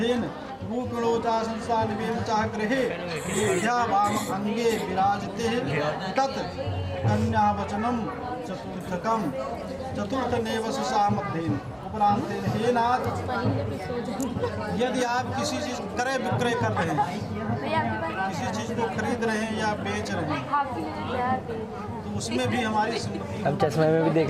भूपिणोचा संसानिवेम चाह गृहे विद्या वाम अंगे विराजते तत् कन्या वचनम चतुर्थकम चतुर्थ नेवस सामध्येन उपरांत हे नाथ, यदि आप किसी चीज क्रय विक्रय कर रहे हैं, किसी चीज को खरीद रहे हैं या बेच रहे हैं, तो उसमें भी हमारी हम चश्मे में भी देख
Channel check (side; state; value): both; identical; correlation 1.00